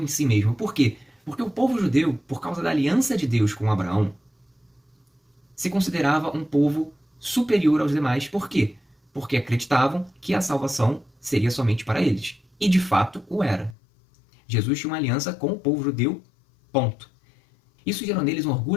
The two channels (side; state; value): right; drops out; at 13.8 s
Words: em si mesmo. Por quê? Porque o povo judeu, por causa da aliança de Deus com Abraão, se considerava um povo superior aos demais. Por quê? Porque acreditavam que a salvação seria somente para eles. E de fato o era. Jesus tinha uma aliança com o povo judeu, ponto. Isso gerou neles um